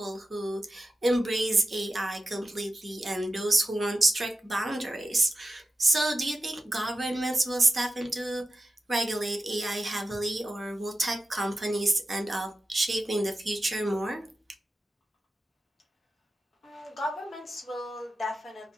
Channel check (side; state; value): both; normal; correlation 0.93